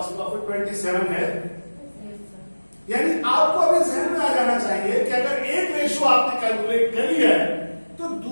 प्रॉफिट 27 है। यानी आपको अभी जहन में आ जाना चाहिए कि अगर एक रेशो आपने कैलकुलेट कर लिया है तो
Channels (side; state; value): both; inverted; correlation -1.00